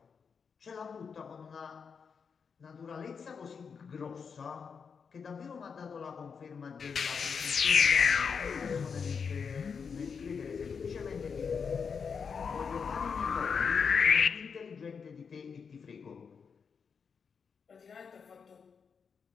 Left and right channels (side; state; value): right; quieter; 6.0 dB